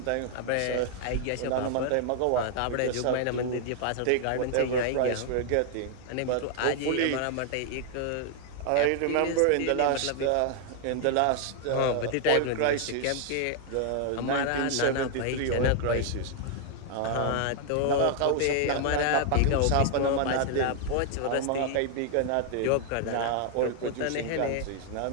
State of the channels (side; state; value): both; different; correlation 0.00